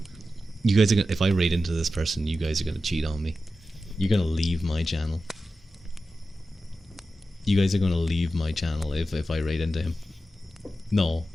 You guys are gonna, if I raid into this person, you guys are gonna cheat on me. You're gonna leave my channel. You guys are gonna leave my channel if I raid into him. No,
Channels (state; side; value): normal; both; correlation 0.92